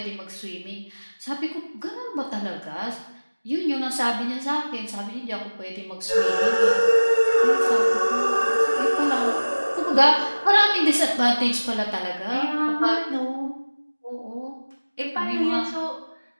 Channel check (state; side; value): inverted; both; correlation -1.00